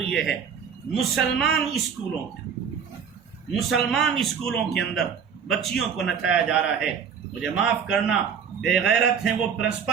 یہ ہے مسلمان اسکولوں کے اندر بچیوں کو نچایا جا رہا ہے۔ مجھے معاف کرنا، بے غیرت ہیں وہ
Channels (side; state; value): left; quieter; 7.1 dB